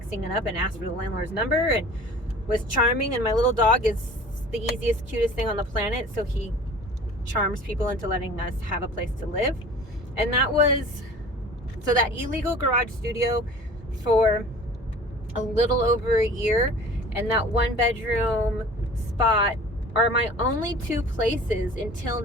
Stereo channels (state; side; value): normal; both; correlation 0.43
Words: it up and asked for the landlord's number and was charming. And my little dog is the easiest, cutest thing on the planet, so he charms people into letting us have a place to live. And that was so that illegal garage studio for a little over a year, and that 1-bedroom spot are my only 2 places until